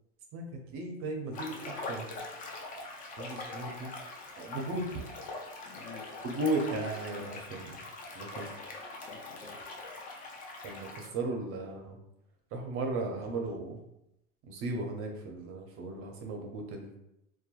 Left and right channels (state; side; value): normal; both; correlation 0.18